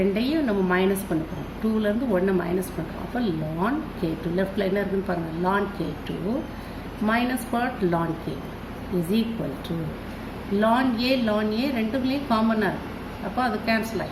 நம்ம மைனஸ் பண்ண போகிறோம். 2லேருந்து 1 மைனஸ் பண்ணுறோம். அப்போ ln K2 லெஃப்டில் என்ன இருக்குதுன்னு பாருங்கள், ln K2 minus what, ln K1 is equal to ln A ரெண்டுக்குள்ளேயும் காமனாக இருக்குது. அப்போ அது கேன்சல்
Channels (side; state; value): both; identical; correlation 1.00